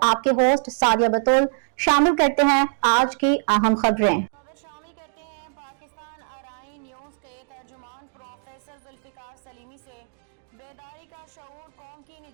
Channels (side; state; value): left; silent; digital silence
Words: आपके होस्ट सादिया बतूल। शामिल करते हैं आज की अहम खबर शामिल करते हैं पाकिस्तान अराई न्यूज के तर्जुमान प्रोफेसर जुल्फिकार सलीमी से। बेदारी का शऊर कौम की